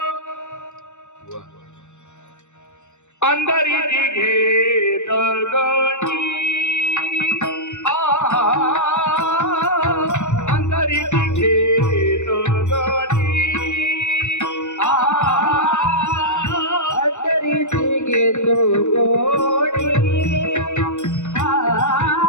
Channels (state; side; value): late; right; 0.84 ms